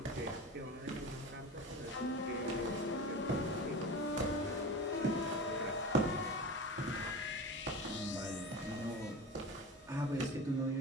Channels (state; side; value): normal; both; correlation 0.30